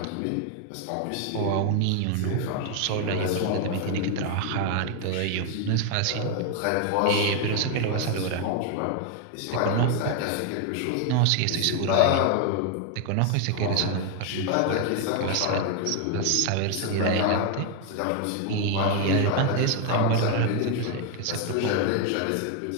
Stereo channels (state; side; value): different; both; correlation 0.01